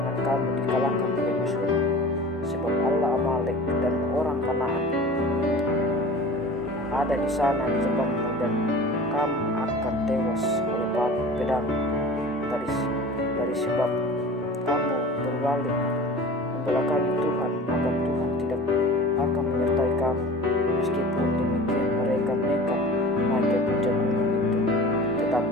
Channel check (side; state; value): both; normal; correlation 0.38